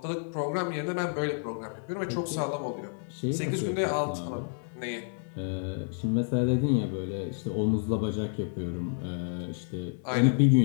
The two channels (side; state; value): right; silent; digital silence